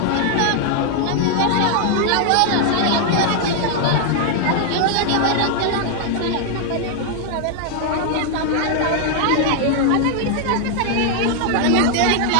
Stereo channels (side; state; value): both; different; correlation 0.00